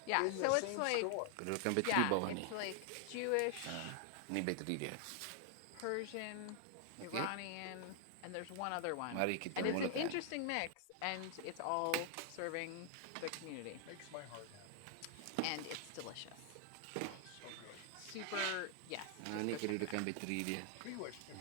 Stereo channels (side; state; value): both; different; correlation 0.00